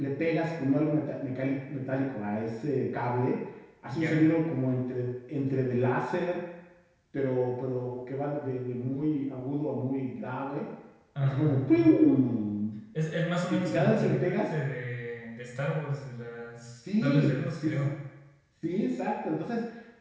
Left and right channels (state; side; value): identical; both; correlation 1.00